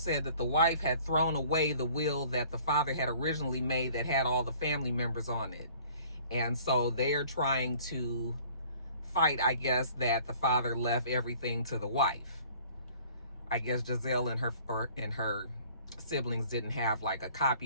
that the wife had thrown away the will that the father had originally made that had all the family members on it. And so they're trying to fight, I guess, that the father left everything to the wife. I guess Giselle and her siblings didn't have like a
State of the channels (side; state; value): both; inverted; correlation -0.53